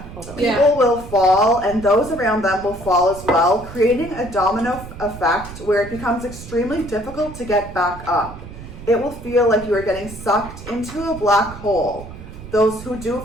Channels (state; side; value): noise; right; rumble, 14 dB below the sound